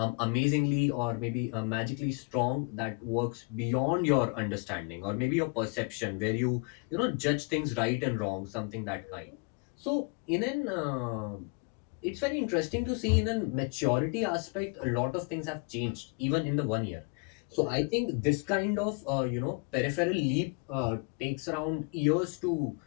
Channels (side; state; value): right; quieter; 33.3 dB